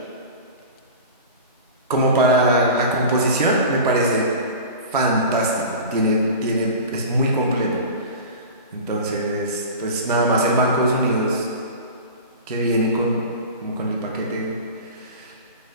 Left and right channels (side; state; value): both; inverted; correlation -0.33